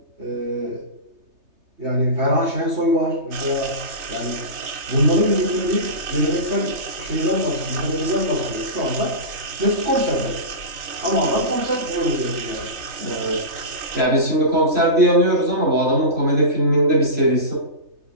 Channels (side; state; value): left; late; 3.3 ms